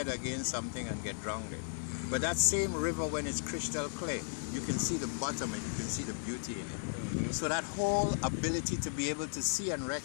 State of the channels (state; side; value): silent; right; digital silence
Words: against something and get drowned. But that same river, when it's crystal clear, you can see the bottom and you can see the beauty in it. So that whole ability to be able to see and